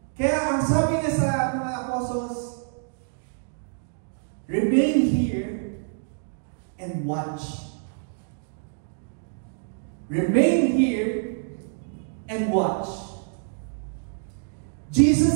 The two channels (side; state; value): left; silent; digital silence